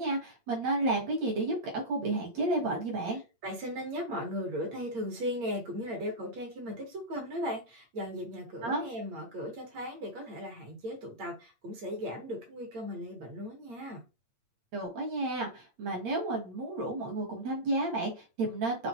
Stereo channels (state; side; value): late; left; 8.7 ms